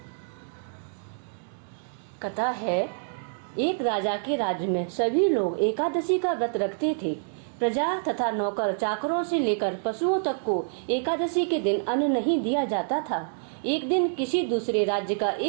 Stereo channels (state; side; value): silent; left; digital silence